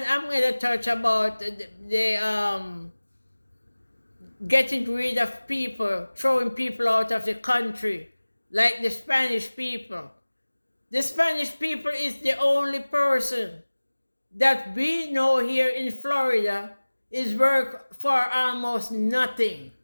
I'm going to touch about the getting rid of people, throwing people out of the country, like the Spanish people. The Spanish people is the only person that we know here in Florida is work for almost nothing.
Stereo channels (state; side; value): inverted; both; correlation -1.00